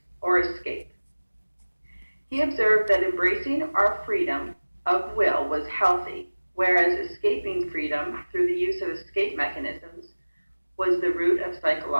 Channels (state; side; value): inverted; both; correlation -1.00